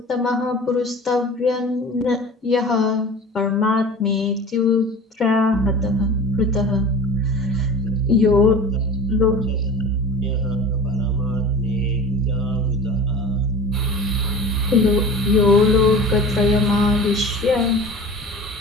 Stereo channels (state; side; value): normal; both; correlation 0.38